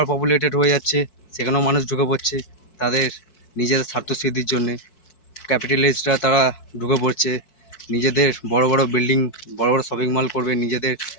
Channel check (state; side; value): late; right; 4.6 ms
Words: পপুলেটেড হয়ে যাচ্ছে, সেখানেও মানুষ ঢুকে পড়ছে তাদের নিজেদের স্বার্থসিদ্ধির জন্যে। ক্যাপিটালিস্টরা তারা ঢুকে পড়ছে, নিজেদের বড় বড় বিল্ডিং, বড় বড় শপিং মল করবে, নিজেদের